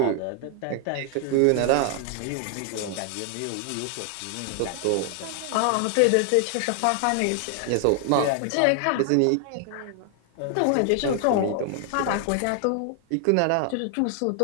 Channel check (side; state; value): both; different; correlation 0.00